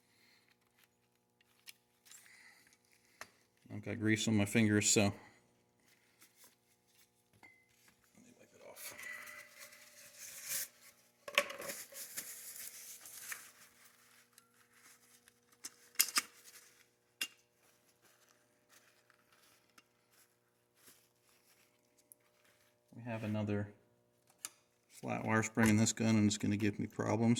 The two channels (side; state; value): both; identical; correlation 1.00